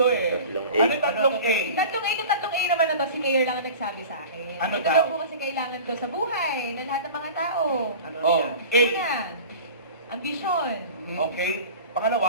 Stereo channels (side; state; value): both; inverted; correlation -0.38